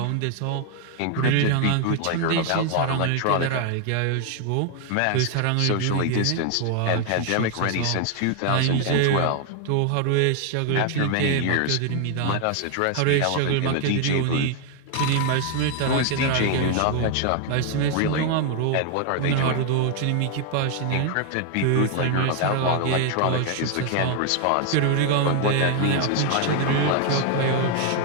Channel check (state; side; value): different; both; correlation 0.00